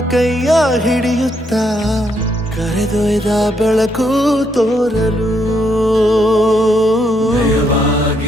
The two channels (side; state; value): both; normal; correlation 0.75